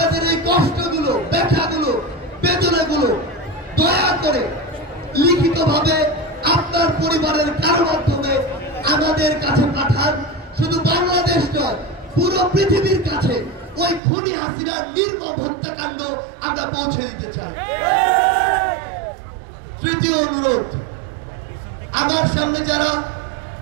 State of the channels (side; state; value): left; drops out; at 14.0 s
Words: এই কষ্টগুলো, ব্যথাগুলো, বেদনাগুলো দয়া করে লিখিতভাবে আপনার পরিবারের কারো মাধ্যমে আমাদের কাছে পাঠান। শুধু বাংলাদেশ নয়, পুরো পৃথিবীর কাছে ওই খুনি হাসিনার নির্মম হত্যাকাণ্ড আমরা পৌঁছে দিতে চাই। তৃতীয় অনুরোধ, আমার সামনে যারা